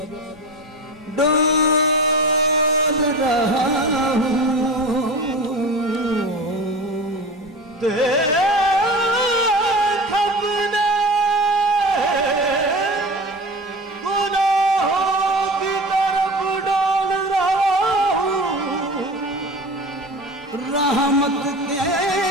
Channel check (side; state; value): both; normal; correlation 0.32